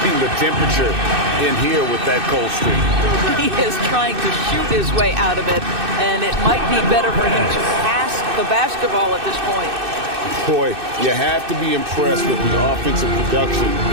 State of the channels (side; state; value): left; late; 2.6 ms